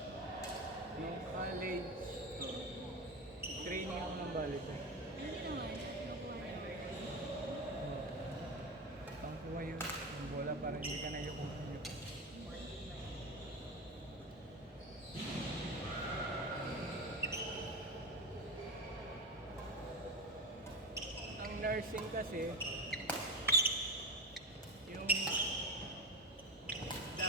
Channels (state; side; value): normal; both; correlation 0.20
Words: Yung college, training ako ng volleyball. Hindi naman. Nakuha niya. para hindi ka na yung ang nursing kasi yung